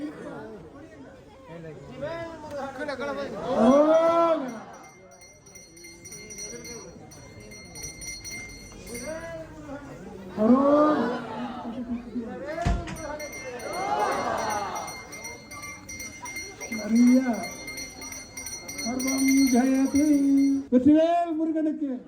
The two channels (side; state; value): both; identical; correlation 1.00